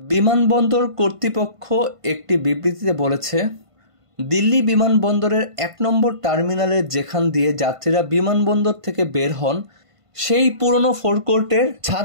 কর্তৃপক্ষ একটি বিবৃতিতে বলেছে, দিল্লি বিমানবন্দরের 1 নম্বর টার্মিনালের যেখান দিয়ে যাত্রীরা বিমানবন্দর থেকে বের হন সেই পুরনো ফোরকোর্টের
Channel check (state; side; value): late; left; 1.5 ms